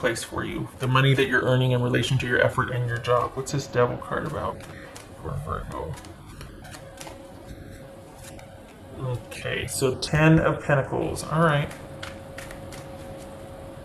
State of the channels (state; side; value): identical; both; correlation 1.00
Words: for you. The money that you're earning in relation to your effort and your job. What's this Devil card about for Virgo? Okay, so 10 of Pentacles. All right.